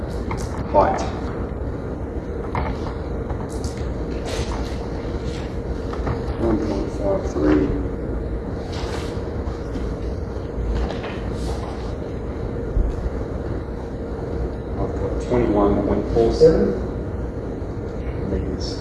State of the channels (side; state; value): both; identical; correlation 1.00